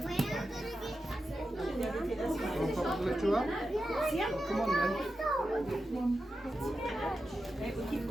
Lift you up? See him? Come on then. Right, we'll keep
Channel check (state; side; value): normal; both; correlation 0.90